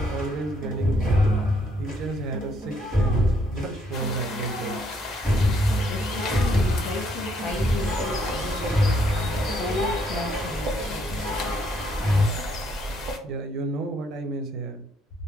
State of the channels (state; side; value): normal; both; correlation 0.71